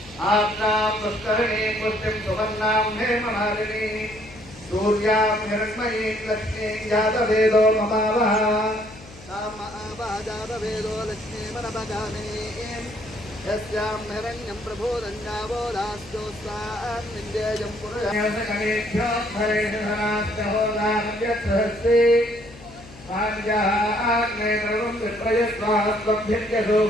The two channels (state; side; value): noise; left; hum, 19 dB below the sound